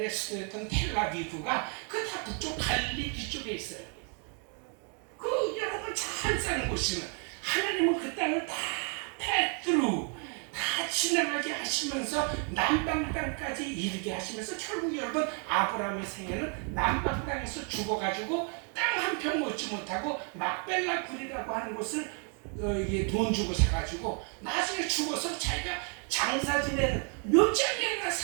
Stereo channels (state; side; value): quieter; left; 39.7 dB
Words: 수도였던 텔라비브가 그 다 북쪽 갈릴리 뒤쪽에 있어요. 그 여러분 잘 사는 곳이면 하나님은 그 땅을 다 패드루 다 지나가게 하시면서 남방 땅까지 이르게 하시면서 결국 여러분 아브라함의 생애는 남방 땅에서 죽어가지고 땅 한 평 얻지 못하고 막벨라 굴이라고 하는 곳을 이게 돈 주고 사가지고 나중에 죽어서 자기가 장사 지내는 몇 장이나